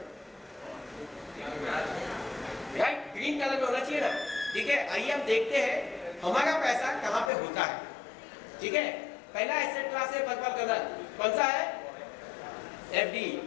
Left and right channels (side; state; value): right; drops out; at 7.3 s